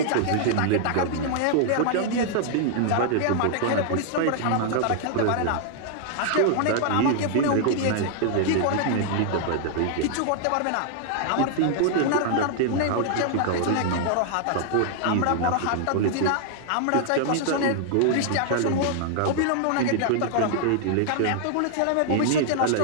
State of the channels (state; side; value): different; both; correlation -0.01